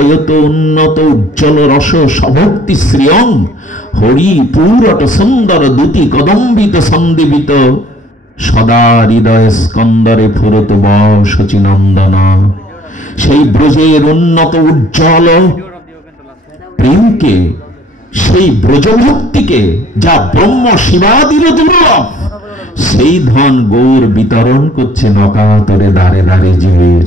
উন্নত উজ্জ্বল রস সভক্তি শ্রিয়ম, হরি পুরট সুন্দর দুতি কদম্বিত সন্দীপিত, সদা হৃদয় স্কন্দরে ফুরত বশচিনন্দন। সেই ব্রজের উন্নত উজ্জ্বল প্রেমকে, সেই ব্রজভক্তিকে, যা ব্রহ্ম শিবাদির দুর্লভ, সেই ধন গৌর বিতরণ করছে নকাতরে দাঁড়ে দাঁড়ে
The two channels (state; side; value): normal; both; correlation 0.57